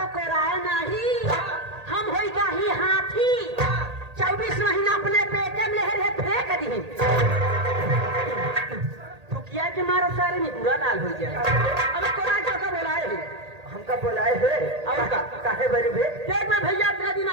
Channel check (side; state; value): left; late; 1.8 ms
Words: राय नहीं, हम हो जाही हाथी 24 महीना अपने पेटे में रहे फेंक दी। थुकिया के मारो सारे में बुरा लाल हो जाए। अब कोरा जो का बोलाए हम हमका बुलाए है और काहे बरी भे देख में भैया इतना दिन